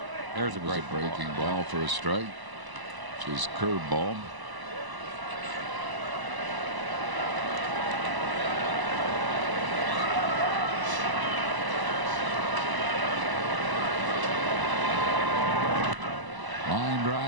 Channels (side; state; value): left; late; 1.0 ms